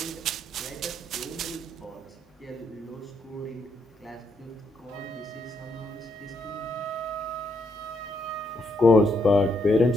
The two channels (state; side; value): normal; both; correlation 0.76